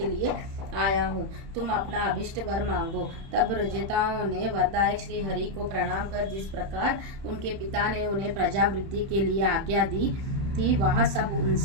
लिए आया हूँ, तुम अपना अभिष्ट वर मांगो। तब प्रचेताओं ने वरदायक श्री हरि को प्रणाम कर जिस प्रकार उनके पिता ने उन्हें प्रजा वृद्धि के लिए आज्ञा दी थी, वह सब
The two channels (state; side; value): late; left; 30 ms